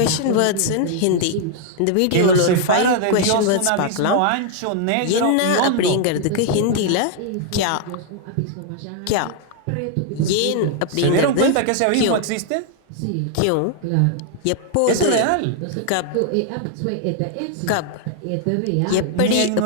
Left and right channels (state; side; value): different; both; correlation 0.00